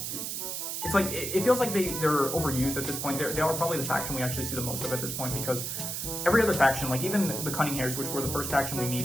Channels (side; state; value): right; noise; hiss, 4 dB below the sound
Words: It's like, it feels like they're overused at this point. They are probably the faction we actually see the most of at this point, because every other faction, like even the Cunning Hares, which were the first faction we